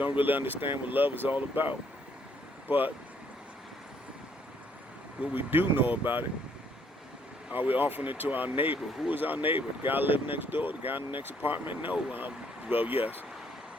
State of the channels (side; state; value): both; normal; correlation 0.67